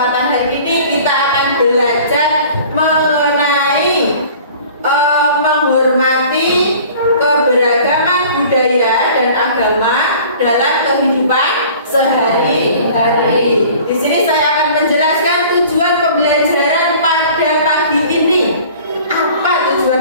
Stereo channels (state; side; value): inverted; both; correlation -0.47